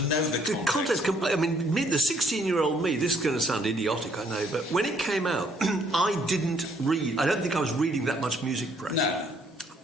know the context. I mean, the 16-year-old me, this is going to sound idiotic, I know, but when it came out, I didn't read. I don't think I was reading that much music press. No.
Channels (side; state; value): both; normal; correlation 0.65